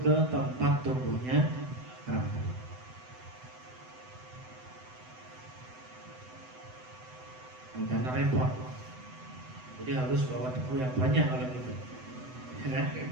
ke tempat tumbuhnya rambut. Karena repot. Jadi harus bawa debu yang banyak kalau gitu. Ya.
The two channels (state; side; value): late; left; 7.9 ms